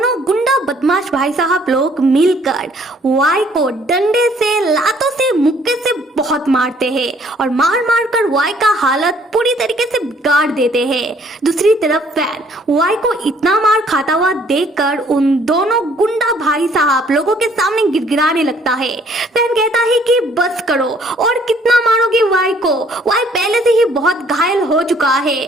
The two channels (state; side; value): normal; both; correlation 0.61